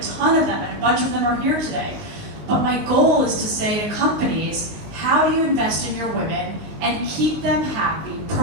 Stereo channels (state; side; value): late; left; 19 ms